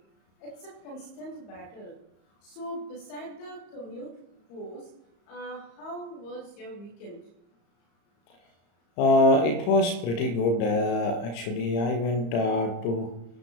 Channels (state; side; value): late; right; 34 ms